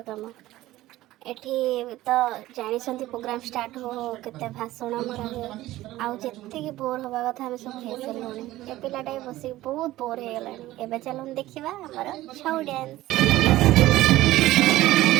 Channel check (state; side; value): quieter; left; 16.2 dB